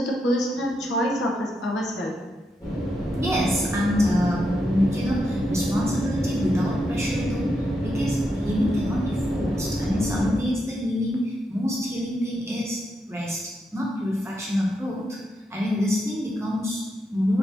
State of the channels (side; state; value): both; normal; correlation 0.83